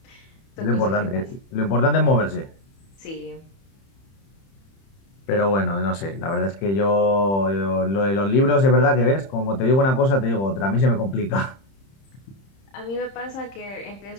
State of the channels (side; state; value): right; late; 30 ms